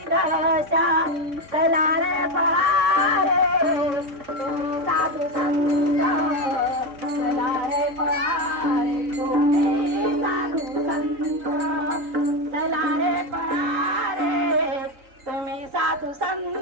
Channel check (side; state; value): left; late; 3.6 ms